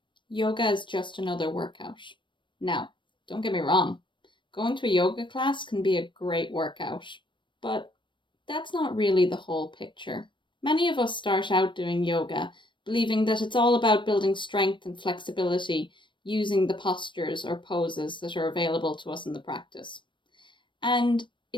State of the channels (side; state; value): right; late; 0.23 ms